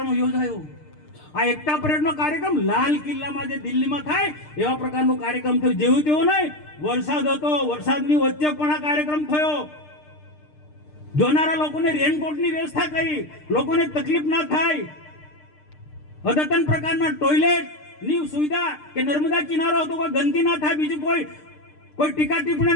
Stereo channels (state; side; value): late; right; 6.6 ms